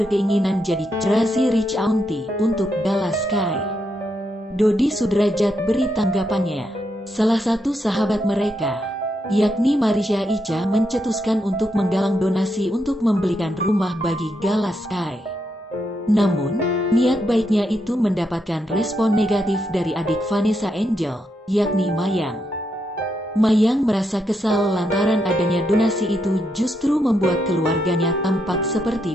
jadi Crazy Rich Auntie untuk Gala Sky. Dodi Sudrajat beri tanggapannya. Salah satu sahabat mereka, yakni Marisha Ica, mencetuskan untuk menggalang donasi untuk membelikan rumah bagi Gala Sky. Namun, niat baiknya itu mendapatkan respon negatif dari adik Vanessa Angel, yakni Mayang. Mayang merasa kesal lantaran adanya donasi itu justru membuat keluarganya tampak seperti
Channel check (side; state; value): both; normal; correlation 0.81